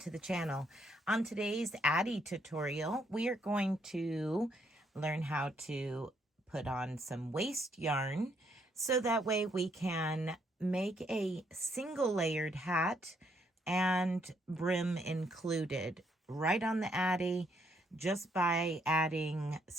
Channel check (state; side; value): normal; both; correlation 0.72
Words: the channel. On today's Addi tutorial, we are going to learn how to put on some waste yarn so that way we can make a single layered hat and brim included right on the Addi just by adding